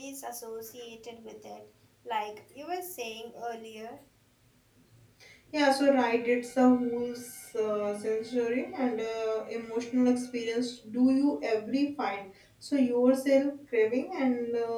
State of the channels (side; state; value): both; identical; correlation 1.00